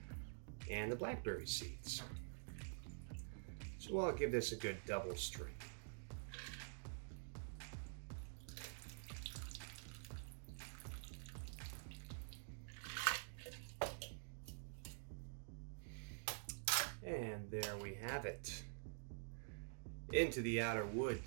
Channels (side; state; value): left; silent; digital silence